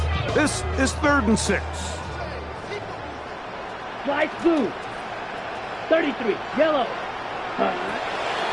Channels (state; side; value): identical; both; correlation 1.00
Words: This is 3rd and 6. Light blue. 33. Yellow.